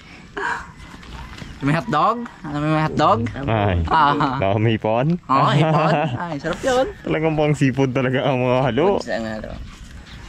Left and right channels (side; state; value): both; identical; correlation 1.00